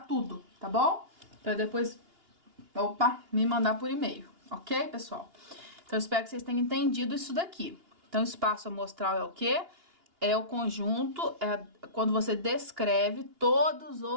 tudo, tá bom? Pra depois, me mandar por e-mail, ok, pessoal? Então, eu espero que vocês tenham entendido isso daqui. Então, espaço amostral é o quê? É o conjunto, quando você descreve todos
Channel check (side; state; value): left; late; 2.8 ms